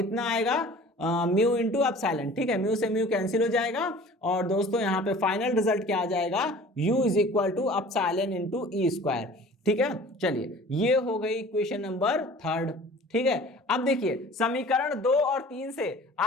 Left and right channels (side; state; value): both; normal; correlation 0.45